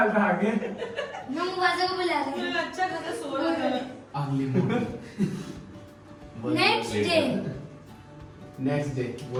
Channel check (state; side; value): identical; both; correlation 1.00